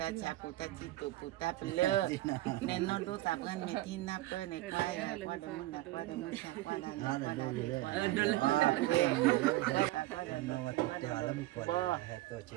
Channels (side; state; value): left; quieter; 17.3 dB